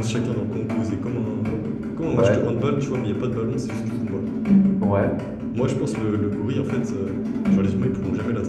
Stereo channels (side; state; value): both; identical; correlation 1.00